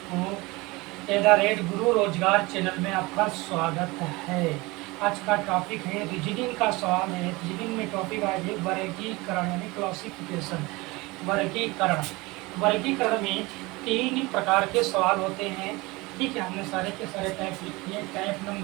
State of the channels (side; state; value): left; quieter; 23.1 dB